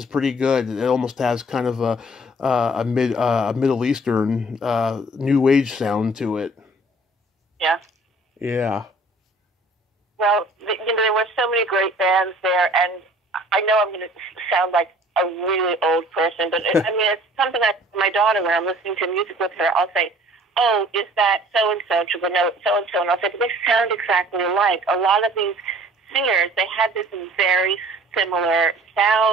pretty good. It almost has kind of a Middle Eastern new age sound to it. Yeah. Yeah. Well, there were so many great bands there, and I know I'm going to sound like a really old person, but it's something that my daughter, when I'm listening to music with her, I'll say, "Oh, is that so-and-so?" She'll go, "No, it's so-and-so." And I'll say, "But they sound exactly alike." A lot of these singers, they had this very similar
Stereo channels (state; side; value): normal; both; correlation 0.52